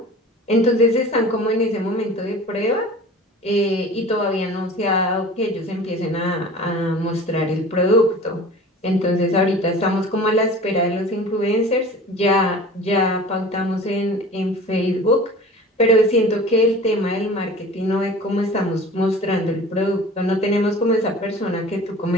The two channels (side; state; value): both; normal; correlation 0.41